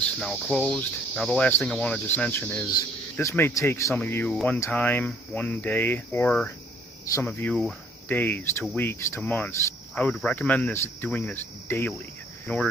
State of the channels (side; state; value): both; normal; correlation 0.60